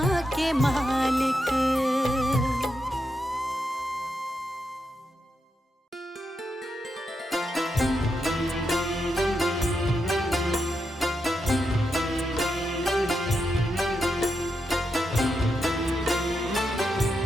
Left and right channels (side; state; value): both; normal; correlation 0.85